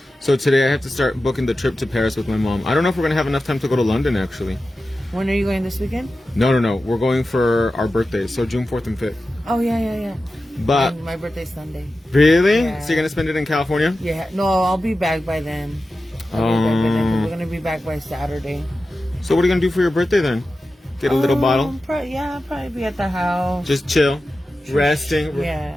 So today I have to start booking the trip to Paris with my mom. I don't know if we're going to have enough time to go to London, actually. When are you going this weekend? No. We're going for our birthdays, so June 4th and 5th. Oh, yeah. But... And my birthday's Sunday. Really? Yeah. So you're going to spend it in California? Yeah. No, I'll be back by then. We're going to be back by Saturday. So what are you going to do for your birthday then? Get a little bottle? I'll probably be at the house. Just chill, resting,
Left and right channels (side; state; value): both; normal; correlation 0.93